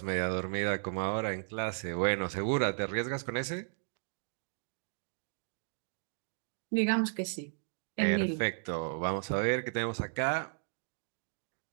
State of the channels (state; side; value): silent; left; digital silence